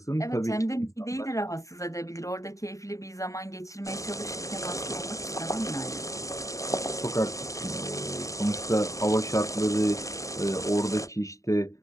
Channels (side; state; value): right; late; 0.16 ms